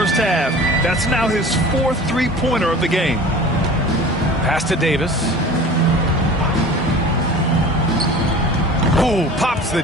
half. That's now his fourth three-pointer of the game. Pass to Davis. Ooh, pops the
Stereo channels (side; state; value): both; normal; correlation 0.41